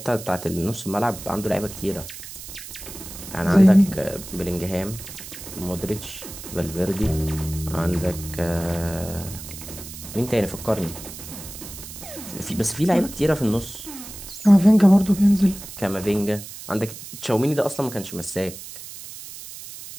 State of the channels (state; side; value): noise; right; hiss, 13 dB below the sound